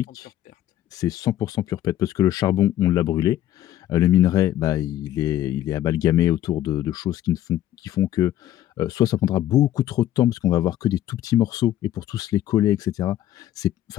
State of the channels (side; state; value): right; quieter; 12.8 dB